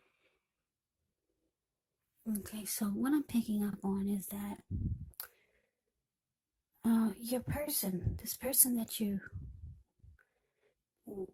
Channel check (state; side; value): identical; both; correlation 1.00